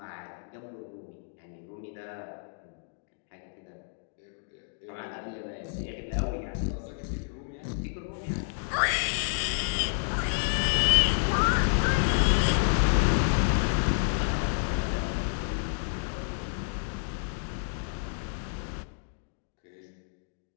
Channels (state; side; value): silent; right; digital silence